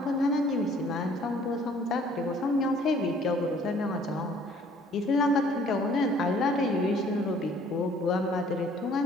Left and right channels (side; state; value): both; normal; correlation 0.57